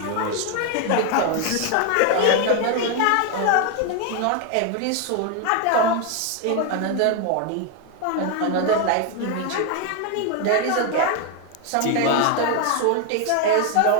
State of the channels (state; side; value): different; both; correlation 0.01